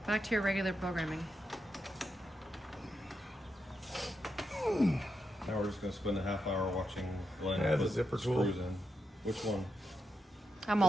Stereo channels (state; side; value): normal; both; correlation 0.85